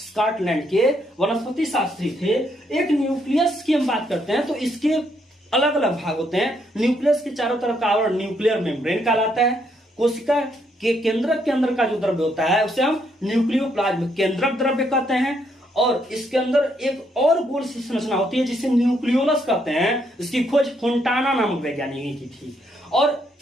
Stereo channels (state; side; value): normal; both; correlation 0.74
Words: के वनस्पति शास्त्री थे। एक न्यूक्लियस की हम बात करते हैं तो इसके अलग अलग भाग होते हैं। न्यूक्लियस के चारों तरफ का आवरण न्यूक्लियर मेम्ब्रेन कहलाता है। कोशिका के केंद्रक के अंदर का जो द्रव्य होता है उसे हम न्यूक्लियोप्लाज्म केंद्रक द्रव्य कहते हैं। और इसके अंदर एक और गोल सी संरचना होती है जिसे न्यूक्लियोलस कहते हैं। इसकी खोज फोंटाना नामक वैज्ञानिक ने की थी। और